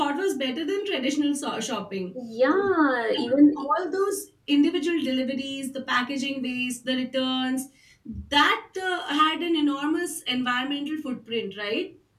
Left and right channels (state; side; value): identical; both; correlation 1.00